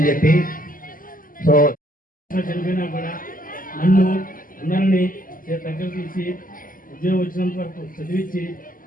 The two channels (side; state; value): right; late; 0.41 ms